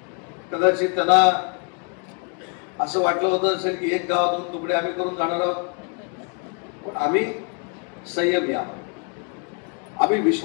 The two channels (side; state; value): right; quieter; 38.7 dB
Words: कदाचित त्यांना असं वाटलं होतं असेल की एक गावातून तुकडे आम्ही करून जाणार आहोत, पण आम्ही संयमी आहोत, आम्ही